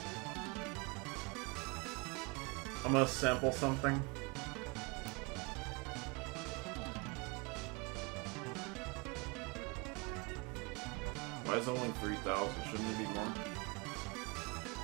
I'm gonna sample something. Why is it only 3,000? Shouldn't it be more?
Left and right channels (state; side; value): quieter; left; 28.3 dB